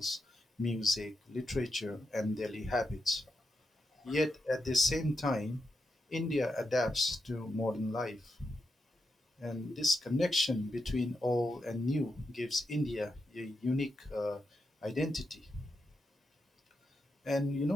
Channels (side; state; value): both; normal; correlation 0.86